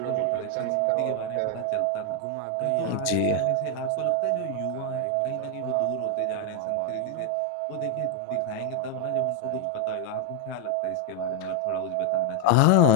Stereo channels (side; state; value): both; different; correlation 0.00